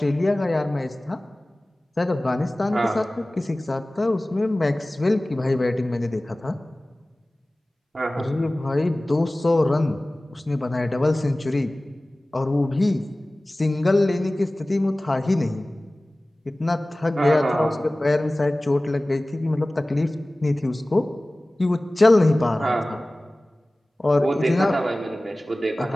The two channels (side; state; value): both; normal; correlation 0.98